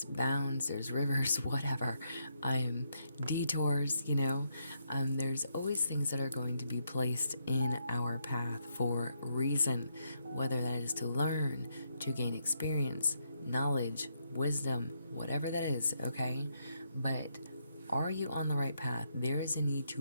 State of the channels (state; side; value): inverted; both; correlation -0.78